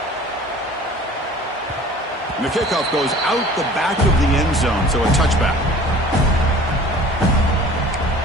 And if kickoff goes out the back of the end zone, so a touchback.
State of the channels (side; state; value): both; normal; correlation 0.46